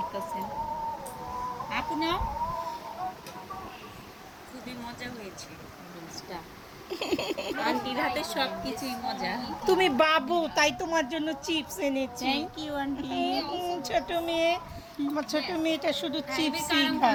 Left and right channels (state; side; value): identical; both; correlation 1.00